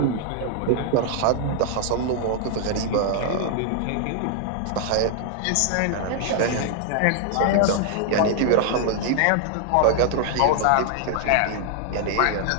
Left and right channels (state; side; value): different; both; correlation 0.00